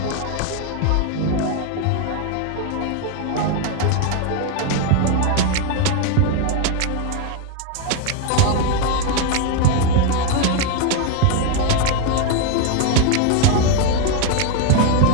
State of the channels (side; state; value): both; different; correlation 0.01